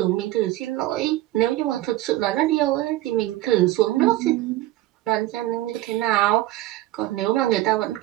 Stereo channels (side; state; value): left; quieter; 16.0 dB